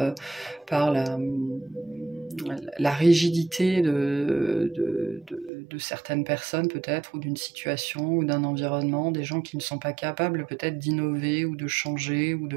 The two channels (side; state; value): left; drops out; at 5.5 s